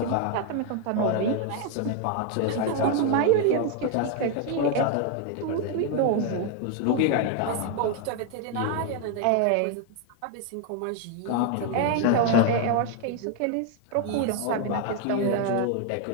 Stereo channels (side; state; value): both; different; correlation 0.00